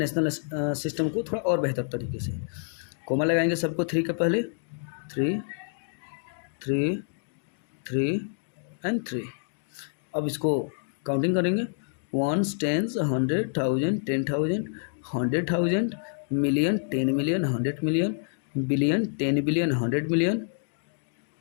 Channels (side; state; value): right; silent; digital silence